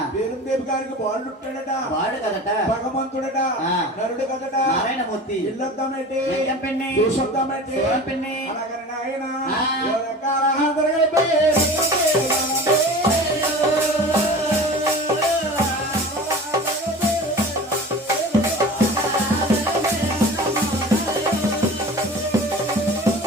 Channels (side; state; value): both; normal; correlation 0.37